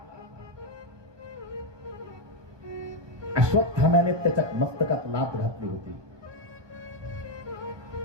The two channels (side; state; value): left; late; 1.2 ms